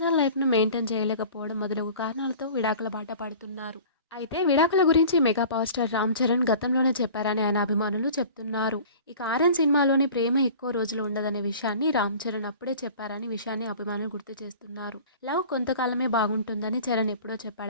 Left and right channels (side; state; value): both; inverted; correlation -0.43